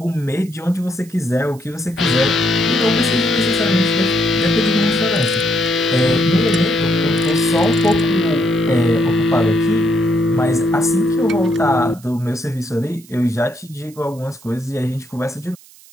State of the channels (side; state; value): right; noise; hiss, 24 dB below the sound